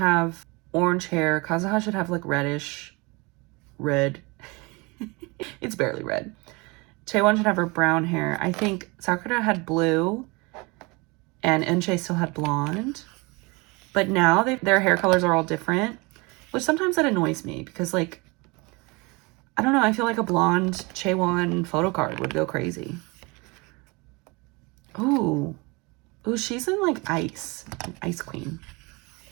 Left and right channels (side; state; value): left; quieter; 26.6 dB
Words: orange hair, Kazuha should have like reddish, red. It's barely red. Taewon should have her brown hair. I think Sakura had blue and Eunchae still had blonde. But now their hair colors are all different, which sometimes that annoys me because, like, I don't know, I feel like a blonde Chaewon photo card would go crazy. Ooh. Ooh, she's in, like, Ice Queen.